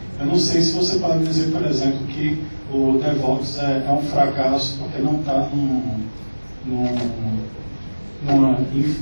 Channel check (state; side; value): inverted; both; correlation -1.00